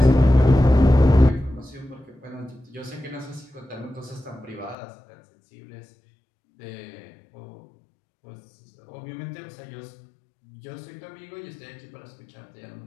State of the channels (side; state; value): right; drops out; at 4.8 s